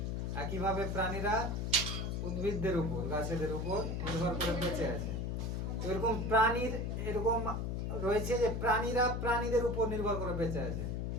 একইভাবে প্রাণীরা উদ্ভিদদের উপর, গাছেদের উপর নির্ভর করে বেঁচে আছে। এরকম প্রাণীর এরকম রয়েছে যে প্রাণীরা প্রাণীদের উপর নির্ভর করে বেঁচে আছে।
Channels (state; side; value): noise; left; hum, 1 dB below the sound